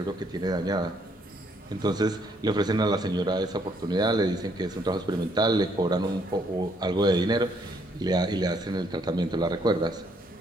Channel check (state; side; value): normal; both; correlation 0.69